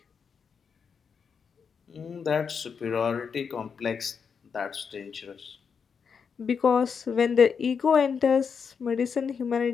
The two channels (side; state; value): right; quieter; 6.3 dB